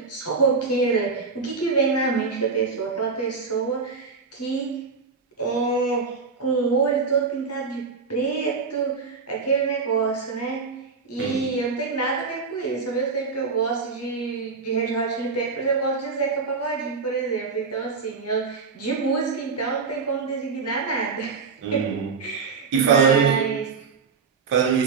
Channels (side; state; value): left; quieter; 4.9 dB